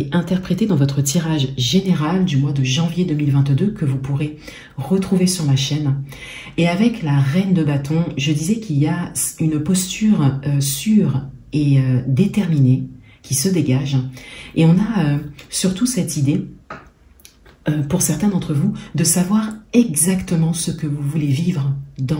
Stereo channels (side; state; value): both; identical; correlation 1.00